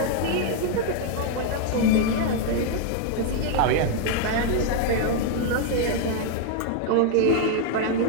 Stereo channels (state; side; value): different; both; correlation 0.00